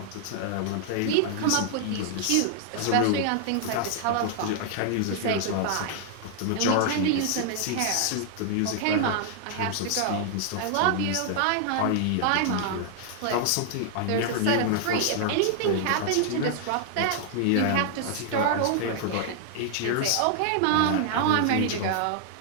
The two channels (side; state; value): both; different; correlation 0.00